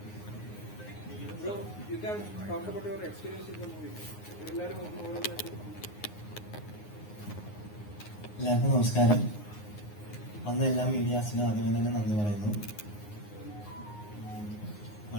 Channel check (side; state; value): right; late; 9.6 ms